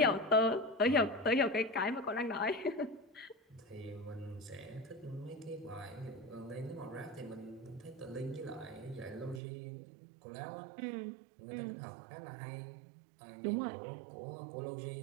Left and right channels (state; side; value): drops out; left; at 9.4 s